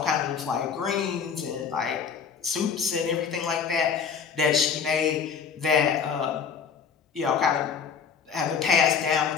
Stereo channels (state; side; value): quieter; right; 6.5 dB